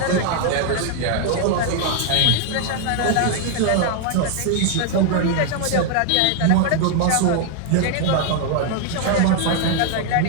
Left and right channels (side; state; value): both; different; correlation 0.00